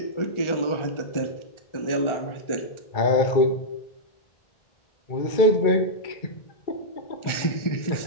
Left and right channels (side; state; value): right; late; 1.4 ms